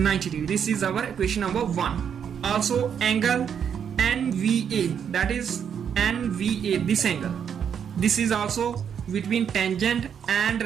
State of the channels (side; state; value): left; quieter; 7.9 dB